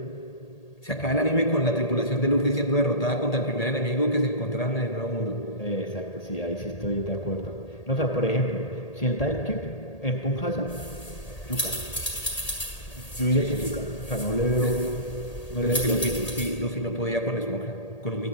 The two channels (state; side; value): late; right; 1.8 ms